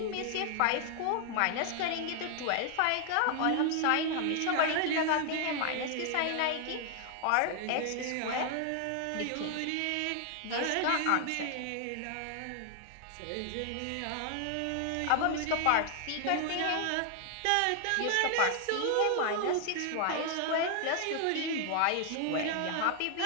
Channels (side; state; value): both; different; correlation 0.00